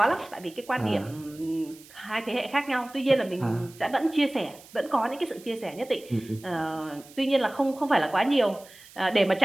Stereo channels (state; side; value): noise; right; hiss, 22 dB below the sound